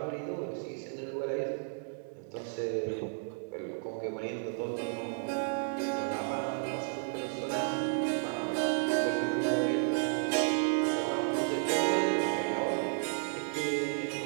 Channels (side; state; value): left; silent; 56 dB below the other